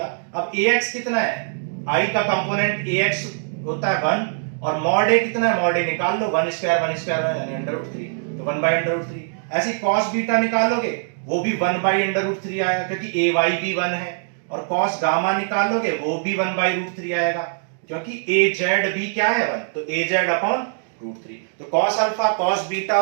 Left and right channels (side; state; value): left; silent; digital silence